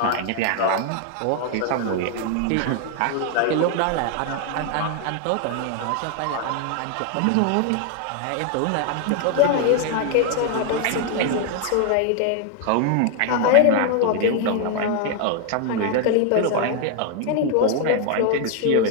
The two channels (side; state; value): both; different; correlation 0.00